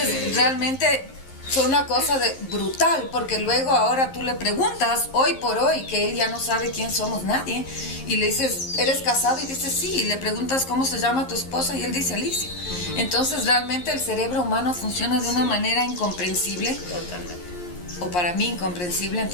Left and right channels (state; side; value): late; right; 11 ms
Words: realmente fue una cosa brutal, porque luego ahora tú le preguntas, hoy por hoy, que él ya no sabe quién somos nadie, y le dices, ¿eres casado? Y dice, sí, y le preguntas cómo se llama tu esposa, y él dice, Alicia. Entonces realmente el cerebro humano funciona de una manera incomprensible. Totalmente. O para mí incomprensible,